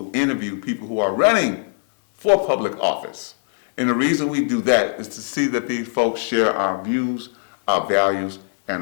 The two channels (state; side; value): silent; right; digital silence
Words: interview people who are running for public office. And the reason we do that is to see that these folks share our views, our values,